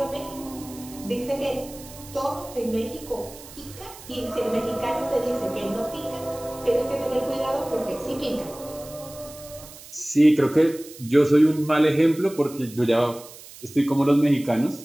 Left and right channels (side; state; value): right; noise; hiss, 18 dB below the sound